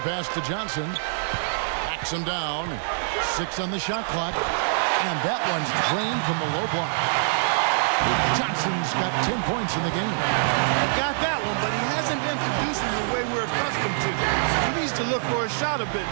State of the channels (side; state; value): left; silent; digital silence